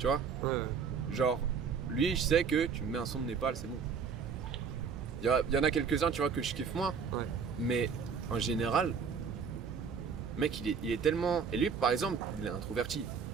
vois? Ouais. Genre, lui, je sais que tu me mets un son de Népal, c'est bon. Il y en a quelques-uns, tu vois, que je kiffe moins. Ouais. Mais en général, mec, il est tellement... Et lui, par exemple, il est introverti.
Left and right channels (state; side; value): quieter; left; 6.2 dB